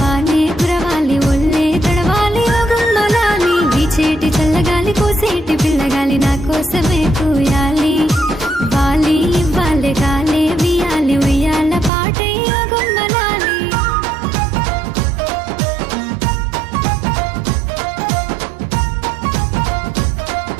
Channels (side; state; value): left; drops out; at 11.9 s